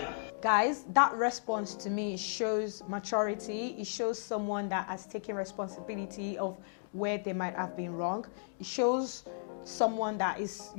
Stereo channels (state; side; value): silent; right; digital silence